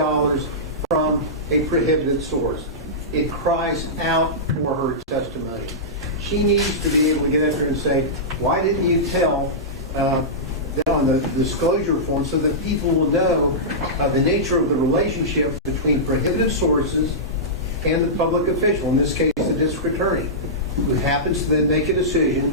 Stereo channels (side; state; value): both; normal; correlation -0.15